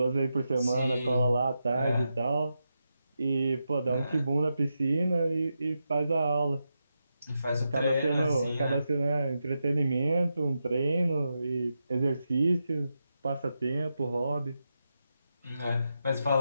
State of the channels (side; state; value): both; inverted; correlation -0.87